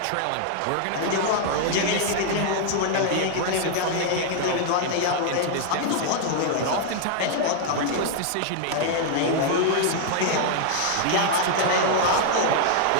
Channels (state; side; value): different; both; correlation 0.00